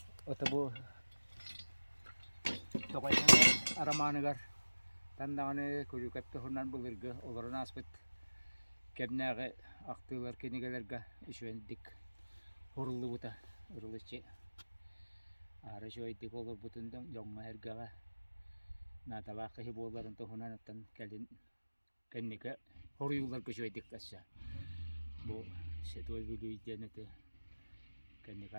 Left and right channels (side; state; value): both; inverted; correlation -1.00